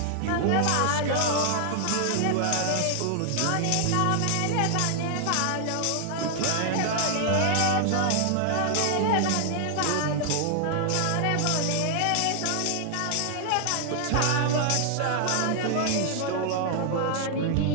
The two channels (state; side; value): different; both; correlation 0.00